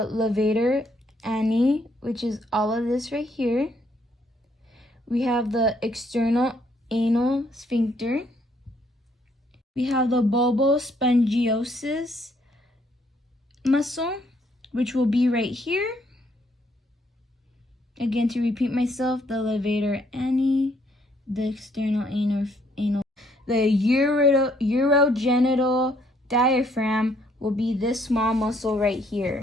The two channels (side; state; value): both; normal; correlation 0.69